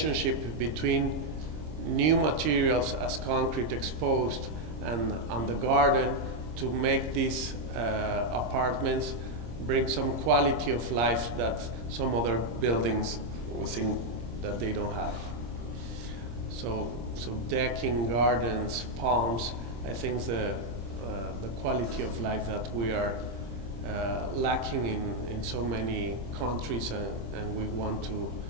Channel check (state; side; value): late; left; 26 ms